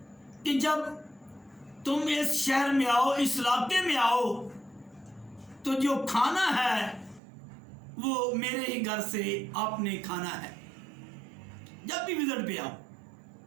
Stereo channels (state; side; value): drops out; left; at 7.2 s